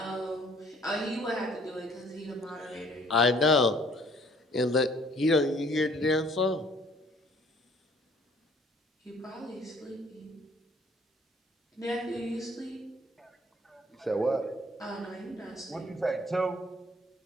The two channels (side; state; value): both; normal; correlation 0.58